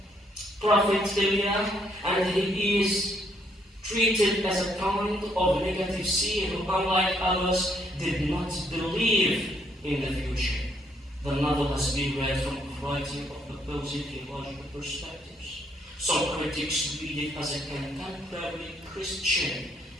prophet Elijah, and he is treated as a kind of negative seer who, unlike others, did not believe in the future. The novel has been read from a variety of opposing theological perspectives. Some critics read it as a contemporary Christian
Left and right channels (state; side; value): normal; both; correlation 0.71